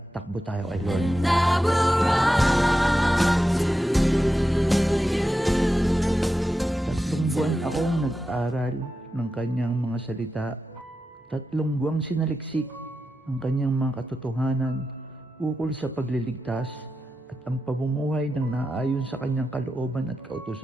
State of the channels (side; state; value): both; normal; correlation 0.90